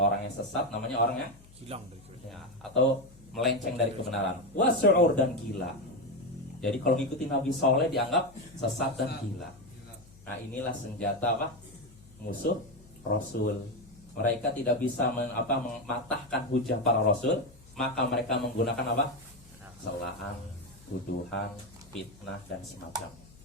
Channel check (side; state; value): left; noise; hum, 24 dB below the sound